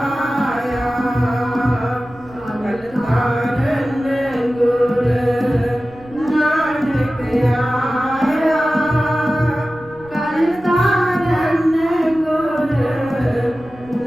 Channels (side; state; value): right; noise; rumble, 23 dB below the sound